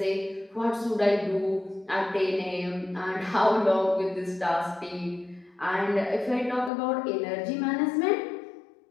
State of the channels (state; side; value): drops out; right; at 6.7 s